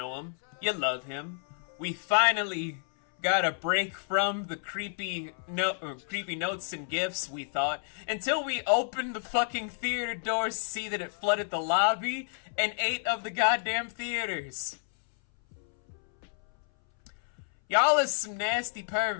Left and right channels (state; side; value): silent; right; 58 dB below the other